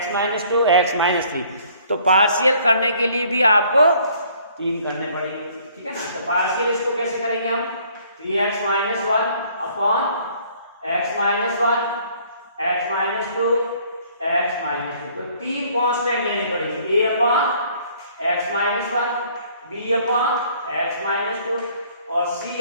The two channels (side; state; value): both; inverted; correlation -0.59